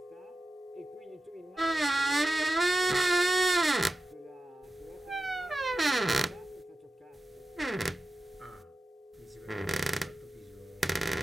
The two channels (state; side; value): normal; both; correlation 0.93